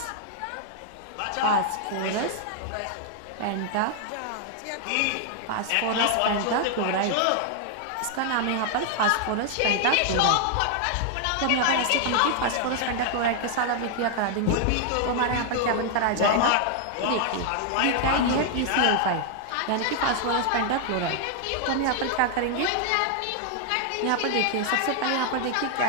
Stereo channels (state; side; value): different; both; correlation 0.00